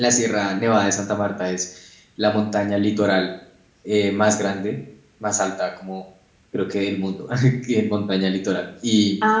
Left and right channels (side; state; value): both; identical; correlation 1.00